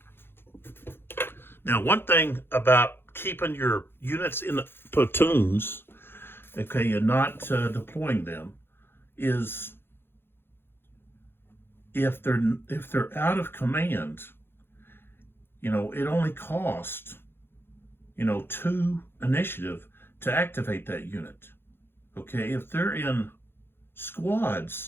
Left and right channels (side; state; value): right; late; 0.11 ms